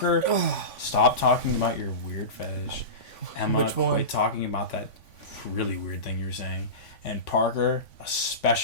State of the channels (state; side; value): late; right; 3.5 ms